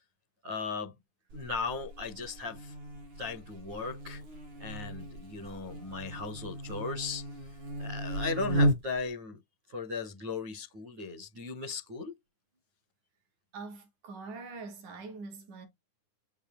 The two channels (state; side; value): late; left; 9.7 ms